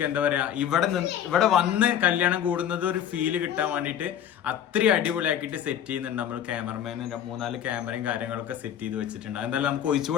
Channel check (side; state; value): right; quieter; 9.8 dB